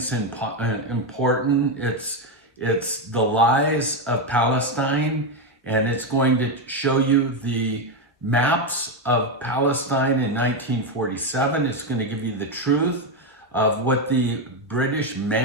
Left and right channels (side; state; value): both; normal; correlation 0.08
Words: is important. It's the lies of Palestine, and it's going to show you the maps of Palestine in 1947. It's going to give you the truth of what the British